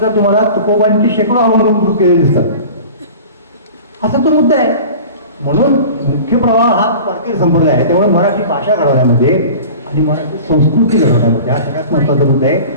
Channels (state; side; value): inverted; both; correlation -0.39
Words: तुम्हाला तुकोबांची शेकडो अभंग केलेले दिसतात. असा तो मुद्दा आहे. म्हणून मुख्य प्रवाह हा वारकरी संप्रदाय आहे. त्यामुळे मराठी भाषा घडवण्यामध्ये आणि मराठी संस्कृती घडवण्यामध्ये हा सगळ्यात महत्त्वाचा मुद्दा आहे.